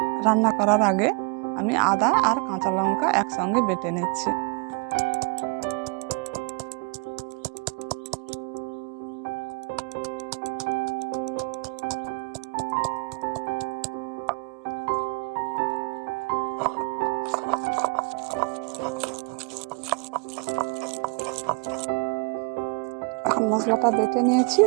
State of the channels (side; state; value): left; quieter; 32.0 dB